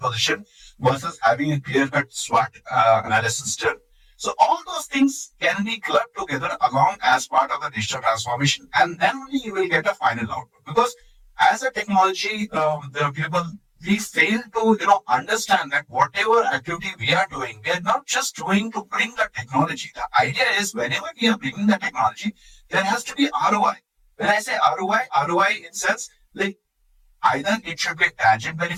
versus having a clear-cut SWOT analysis done. So all those things can be clubbed together along as part of the digital transformation, and then only you will get a final output. Because as a technology, the people we fail to understand that whatever activity we are doing, we are not just doing to bring the technology. The idea is whenever we are bringing the technology, there has to be ROI. When I say ROI in sense like either it should be a tangent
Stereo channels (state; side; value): identical; both; correlation 1.00